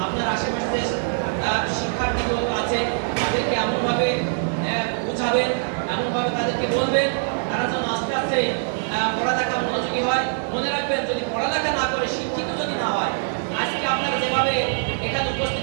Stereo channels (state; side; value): silent; left; 58 dB below the other